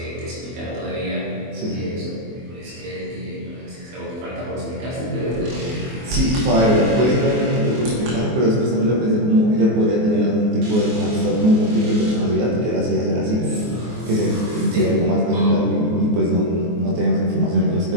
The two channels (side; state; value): left; late; 24 ms